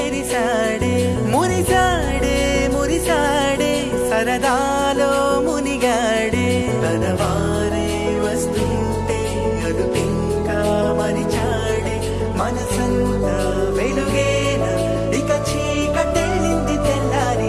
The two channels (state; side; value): identical; both; correlation 1.00